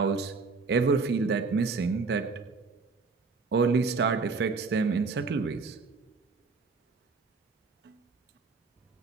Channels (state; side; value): quieter; left; 4.4 dB